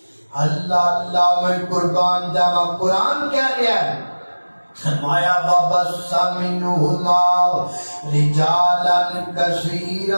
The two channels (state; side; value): inverted; both; correlation -1.00